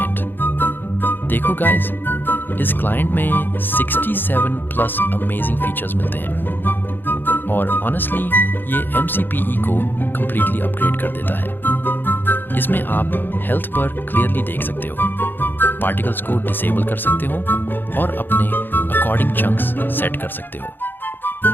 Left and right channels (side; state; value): right; late; 0.095 ms